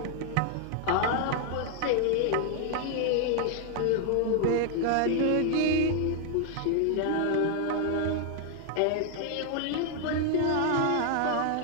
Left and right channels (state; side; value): different; both; correlation 0.00